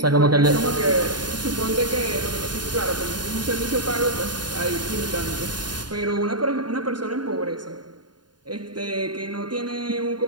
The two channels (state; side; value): late; left; 0.70 ms